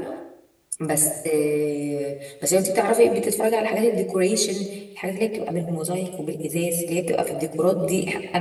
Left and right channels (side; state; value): both; identical; correlation 1.00